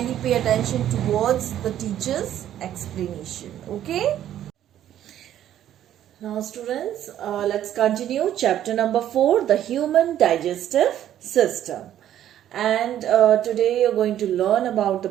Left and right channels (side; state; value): left; quieter; 11.4 dB